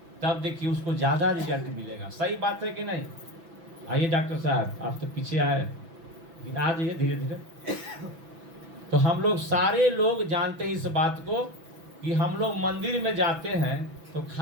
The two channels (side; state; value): left; late; 6.0 ms